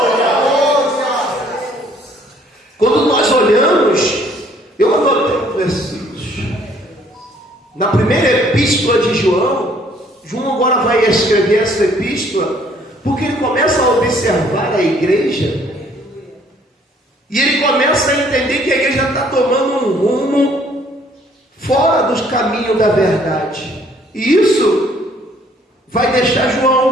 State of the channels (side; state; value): both; normal; correlation 0.61